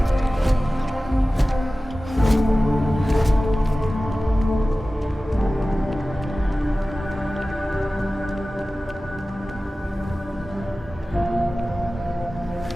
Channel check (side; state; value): both; normal; correlation 0.96